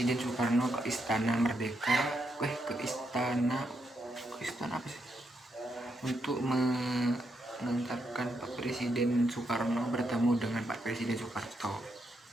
Soekarno ke Istana Merdeka, ke istana apa sih, untuk mengantarkan Pak Presiden Soekarno bertemu dengan Pak Presiden Soeharto.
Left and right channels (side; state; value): both; normal; correlation 0.80